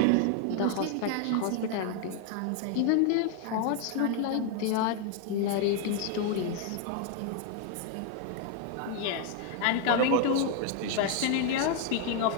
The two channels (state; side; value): different; both; correlation 0.00